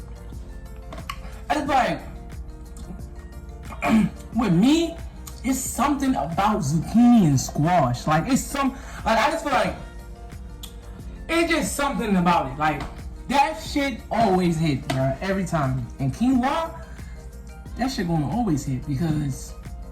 It's like, with me, it's something about zucchini and squash. Like, it's some, like, I just feel like, it's just something about it. Like, that shit always hit, bro, every time. And quinoa, that shit gonna always hit because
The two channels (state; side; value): identical; both; correlation 1.00